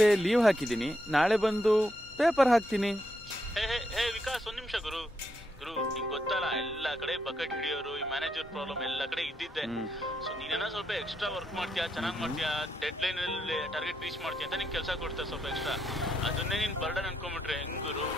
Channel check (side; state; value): both; normal; correlation 0.79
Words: ಡೇ ಲೀವ್ ಹಾಕಿದ್ದೀನಿ. ನಾಳೆ ಬಂದು ಪೇಪರ್ ಹಾಕ್ತೀನಿ. ಹೇ ವಿಕಾಸ್, ಒಂದ್ ನಿಮಿಷ ಗುರು. ನಿಂಗೆ ಗೊತ್ತಲ್ಲ, ಎಲ್ಲ ಕಡೆ ಬಕೆಟ್ ಹಿಡಿಯೋರು, ಈ ಮ್ಯಾನೇಜರ್ ಪ್ರಾಬ್ಲಮ್ ಎಲ್ಲ ಕಡೆ ಇದ್ದಿದ್ದೆ. ಸೊ ನೀನೇನೋ ಸ್ವಲ್ಪ ಎಕ್ಸ್ಟ್ರಾ ವರ್ಕ್ ಮಾಡ್ತೀಯಾ, ಚೆನ್ನಾಗಿ ಮಾಡ್ತೀಯಾ, ಡೆಡ್ ಲೈನ್ ಅಲ್ಲಿ ಟಾರ್ಗೆಟ್ ರೀಚ್ ಮಾಡ್ತೀಯ ಅಂತ ನಿಂಗೆ ಕೆಲಸ ಕೊಡ್ತಾರೆ ಸ್ವಲ್ಪ ಎಕ್ಸ್ಟ್ರಾ. ಅದನ್ನೇ ನೀನ್ ಬರ್ಡನ್ ಅನ್ಕೊಂಡ್ಬಿಟ್ರೆ ಹೆಂಗ್ ಗುರು?